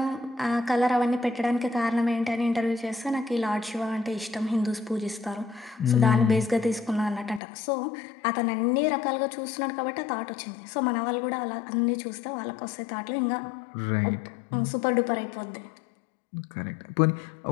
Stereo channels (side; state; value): right; drops out; at 7.4 s